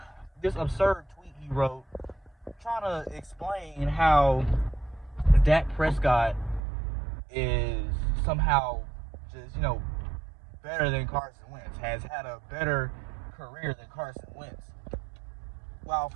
absurd tweet he wrote trying to explain how Dak Prescott is somehow just, better than Carson Wentz, has had a better career than Carson Wentz. While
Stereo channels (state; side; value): drops out; left; at 6.6 s